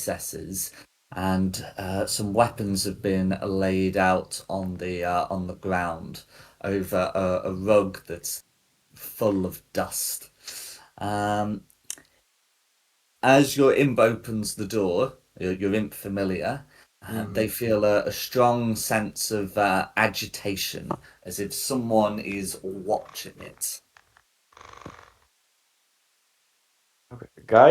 and some weapons have been laid out on the ground over a rug that's full of dust. As your imp opens the door, your imp familiar, they feel a strong sense of agitation, as if someone is watching it. Okay.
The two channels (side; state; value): both; identical; correlation 1.00